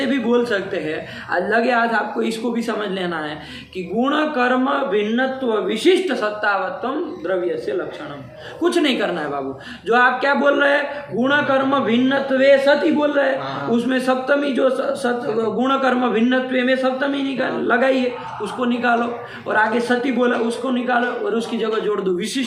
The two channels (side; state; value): both; identical; correlation 1.00